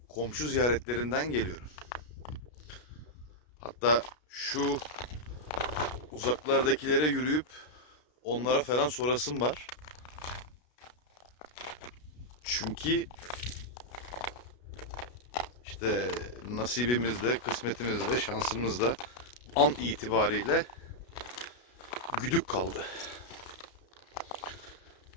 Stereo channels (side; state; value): right; late; 33 ms